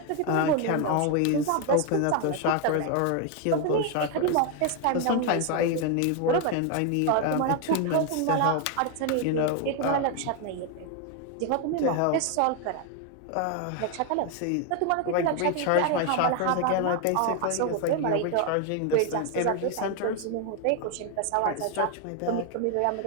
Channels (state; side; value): different; both; correlation 0.01